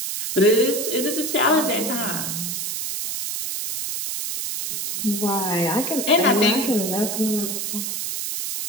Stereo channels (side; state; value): right; noise; hiss, 3 dB below the sound